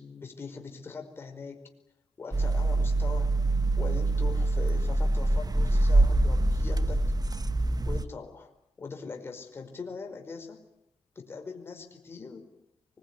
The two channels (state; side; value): normal; both; correlation 0.91